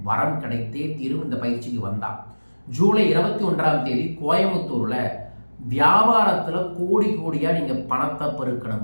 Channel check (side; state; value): both; inverted; correlation -1.00